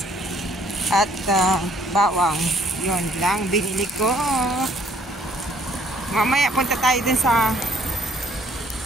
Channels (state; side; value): normal; both; correlation 0.62